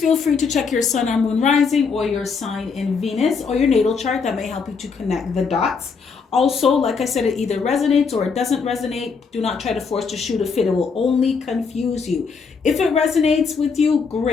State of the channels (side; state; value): right; quieter; 5.3 dB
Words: free to check your sun or moon rising, or your sign in Venus, or your natal chart. That may help you to connect the dots. Also, like I said, it either resonates or it doesn't resonate. Do not try to force to shoot a fit. It will only confuse you. If it resonates with you,